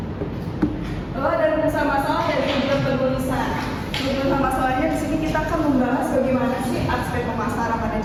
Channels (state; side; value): identical; both; correlation 1.00